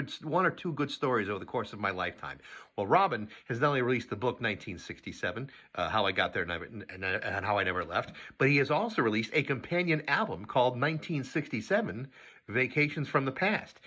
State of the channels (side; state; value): both; identical; correlation 1.00